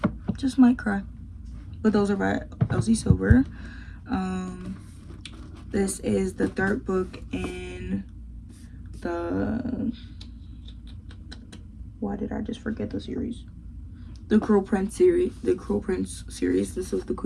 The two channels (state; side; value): identical; both; correlation 1.00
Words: Just might cry. But those are by Elsie Silver. This is the 3rd book in the... Why did I just forget the series? The Cruel Prince series. The Cruel Prince series. This is The